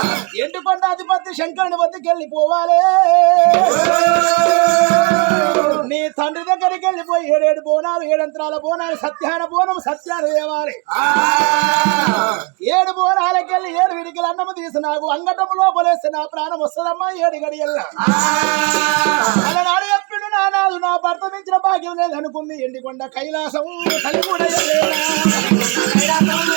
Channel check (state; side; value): quieter; left; 31.5 dB